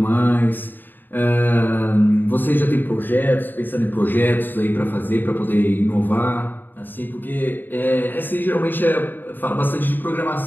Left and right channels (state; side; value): late; right; 0.091 ms